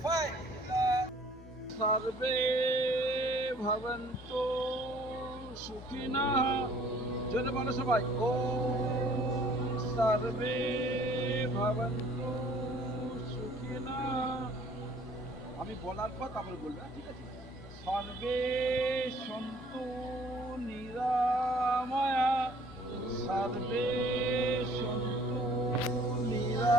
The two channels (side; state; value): both; normal; correlation 0.56